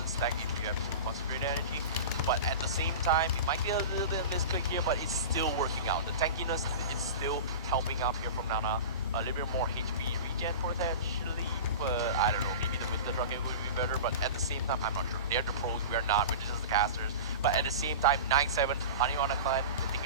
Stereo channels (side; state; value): both; inverted; correlation -0.30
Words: stack if you have concentrated energy. But at the same time, it might be a little bit of misclick here, but it's still working out. The tankiness is still helping out here from Nana. A little bit more HP regen potentially, but I don't know, maybe the Winter Dragon would be better, but at the same time, I'm not sure. They're the pros, we're not, we're just the casters. But at the same time, 9-7, Honey on a climb, they're